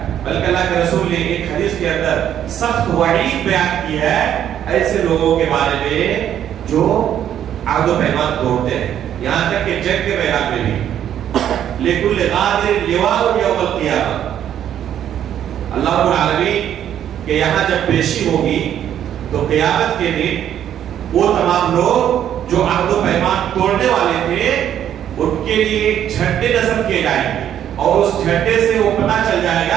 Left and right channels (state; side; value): quieter; left; 10.3 dB